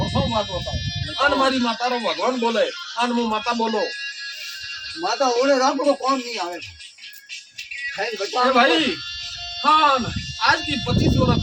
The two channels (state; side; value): identical; both; correlation 1.00